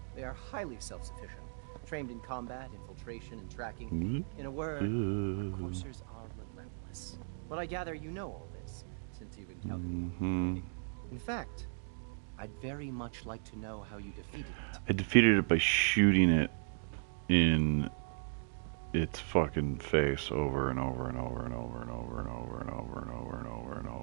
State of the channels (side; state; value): left; silent; digital silence